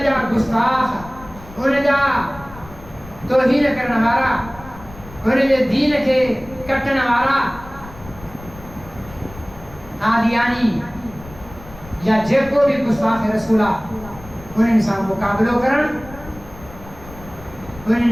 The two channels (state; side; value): noise; left; rumble, 18 dB below the sound